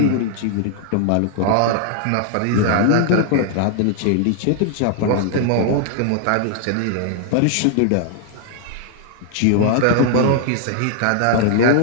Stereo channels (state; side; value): different; both; correlation 0.00